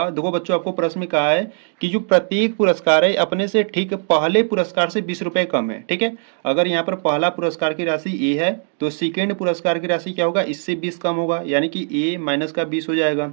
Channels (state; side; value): silent; left; 61 dB below the other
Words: देखो बच्चों आपको प्रश्न में कहा है कि जो प्रत्येक पुरस्कार है अपने से ठीक पहले पुरस्कार से 20 रुपए कम है। ठीक है, अगर यहाँ पर पहला पुरस्कार की राशि ए है तो सेकेंड पुरस्कार की राशि क्या होगा, इससे 20 कम होगा, यानी कि ए माइनस का 20 हो जाएगा।